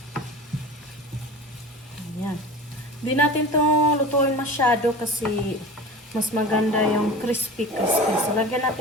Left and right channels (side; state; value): both; normal; correlation 0.35